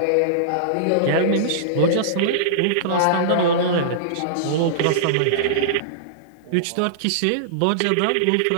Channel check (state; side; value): different; both; correlation -0.02